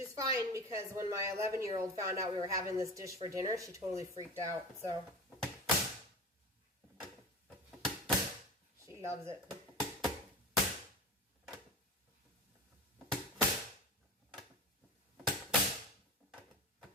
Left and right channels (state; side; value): normal; both; correlation 0.30